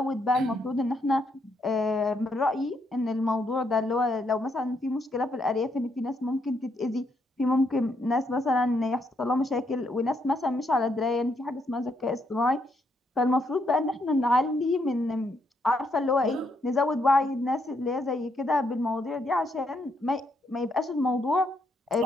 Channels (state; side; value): normal; both; correlation 0.76